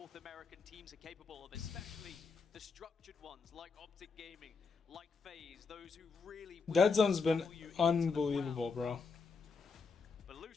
American teams are capable of, especially the structured ones like Optic Gaming, like FaZe, those who really... Dead Zone's been unbelievable, bro. But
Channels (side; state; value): right; quieter; 4.7 dB